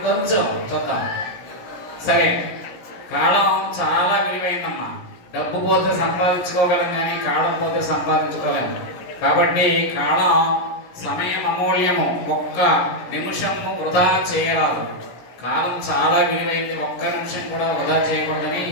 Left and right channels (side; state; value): right; late; 17 ms